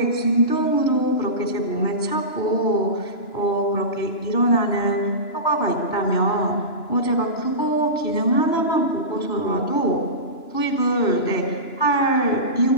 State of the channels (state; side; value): late; right; 2.9 ms